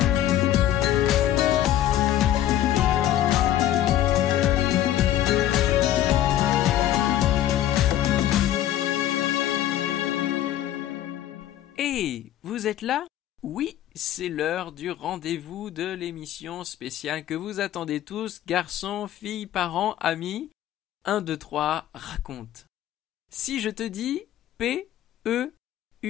Hey, vous êtes là? Oui, c'est l'heure du rendez-vous de l'émission spéciale que vous attendez tous, garçons, filles, parents, amis. 1, 2, 3, raconte. Si je te dis P-E-U-R,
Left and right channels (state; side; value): quieter; right; 12.4 dB